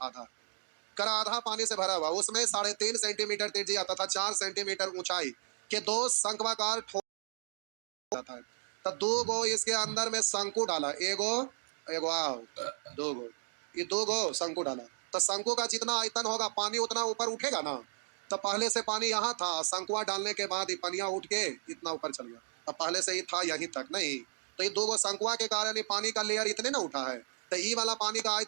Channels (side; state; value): left; silent; digital silence